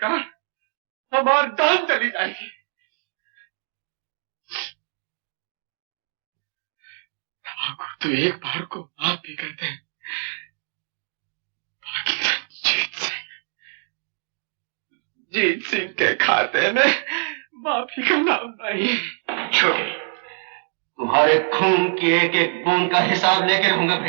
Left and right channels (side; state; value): left; silent; 60 dB below the other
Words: हमारी जान चली जाएगी। तो एक बार को माफ भी करते हैं, जीत सिंह के खाते में माफी का नाम नहीं। छोटे, तुम्हारे खून की एक एक बूंद का हिसाब लेके रहूंगा